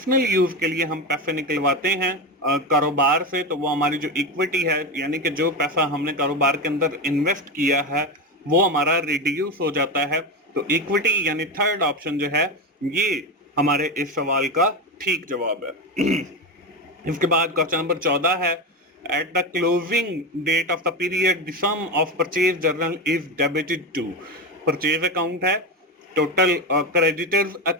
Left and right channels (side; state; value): both; normal; correlation 0.17